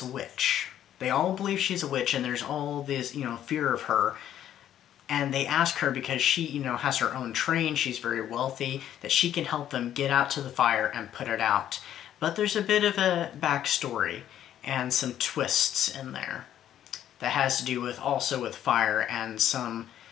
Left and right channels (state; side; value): quieter; right; 11.0 dB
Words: a witch. They all believe she's a witch, and there's all this, you know, fear of her. And they ask her, because she, you know, has her own train, she's very wealthy, that she can help them get out to the fire and put it out. But there's a bit of a backstory and some twists in there that has to do with also with fire and some